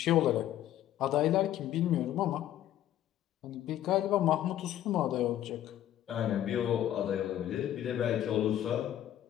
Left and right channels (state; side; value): quieter; right; 12.1 dB